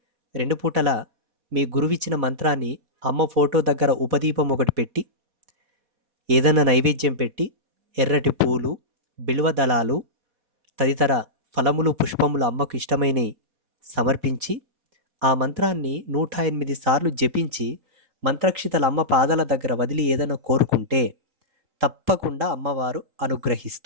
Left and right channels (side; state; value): left; late; 4.1 ms